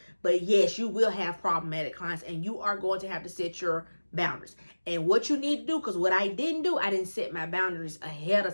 But yes, you will have problematic clients and you are going to have to set your boundaries. And what you need to do, because what I didn't do, I didn't set my boundaries ahead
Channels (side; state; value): both; inverted; correlation -1.00